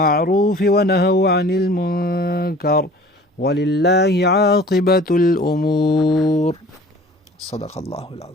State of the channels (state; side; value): normal; both; correlation 0.47